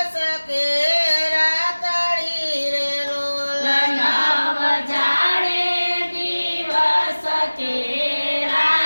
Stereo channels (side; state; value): both; inverted; correlation -1.00